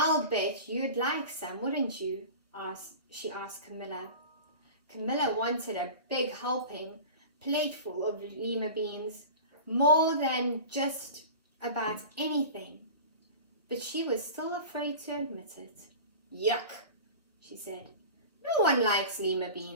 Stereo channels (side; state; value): both; inverted; correlation -0.35